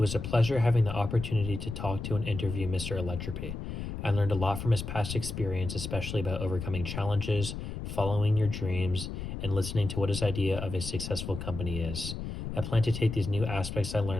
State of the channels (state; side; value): noise; left; rumble, 6 dB below the sound